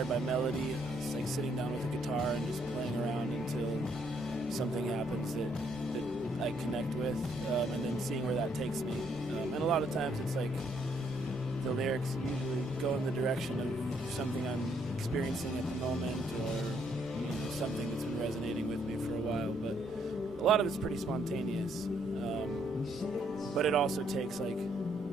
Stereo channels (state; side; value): normal; both; correlation 0.71